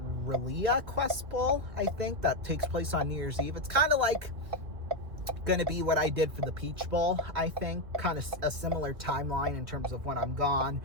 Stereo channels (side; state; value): left; late; 2.3 ms